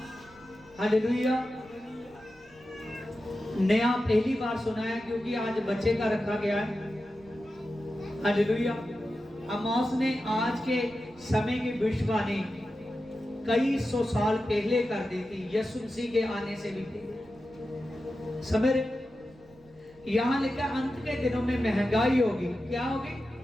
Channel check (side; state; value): right; noise; rumble, 27 dB below the sound